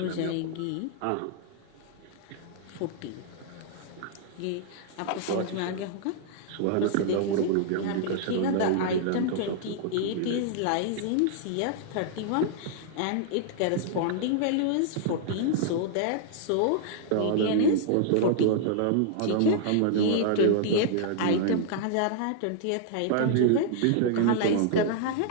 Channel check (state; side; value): different; both; correlation -0.01